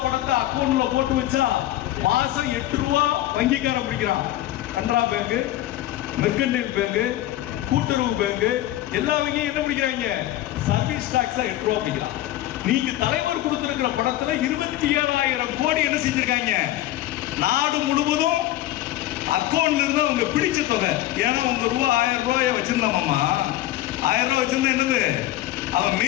பணத்தை அக்கௌண்ட்ல போட்டு வச்சா மாசம் 8 ரூபாய் வங்கிக்காரன் பிடிக்கிறான். கனரா பேங்க், மெர்கன்டைல் பேங்க், கூட்டுறவு பேங்க் எல்லா வங்கியும் என்ன பிடிக்கிறாங்க? சர்வீஸ் டாக்ஸ் 8 ரூபாய் பிடிக்கிறான். நீங்க தலைவர் கொடுத்திருக்கிற பணத்துல 27,000 கோடி என்ன செஞ்சிருக்காங்க? நாடு முழுவதும் அக்கௌண்ட்ல இருந்து அவங்க பிடிச்ச தொகை. ஏன்னா உங்க ரூபா 1000 ரூபாய வச்சிருந்தாமாமா, 1000 ரூபாய் வச்சிருந்தா என்னது? அவன்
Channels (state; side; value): quieter; right; 14.8 dB